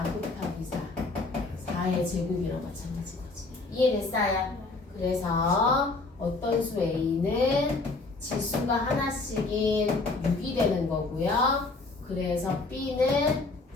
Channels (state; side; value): quieter; right; 3.5 dB